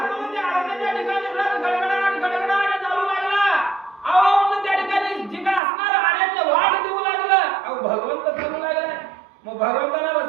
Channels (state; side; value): drops out; left; at 5.6 s